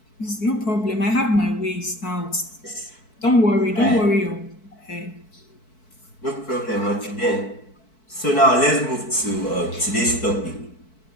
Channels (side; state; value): right; late; 4.6 ms